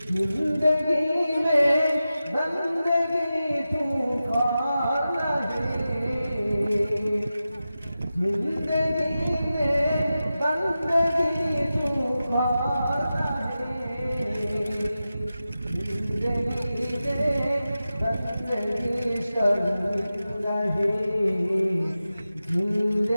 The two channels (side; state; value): both; inverted; correlation -0.93